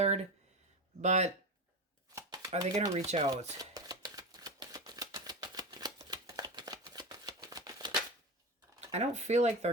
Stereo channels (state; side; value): normal; both; correlation 0.21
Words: But are they going to reach out? I don't feel like they're